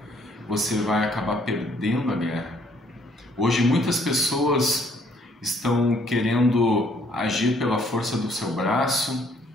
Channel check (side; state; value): both; normal; correlation 0.65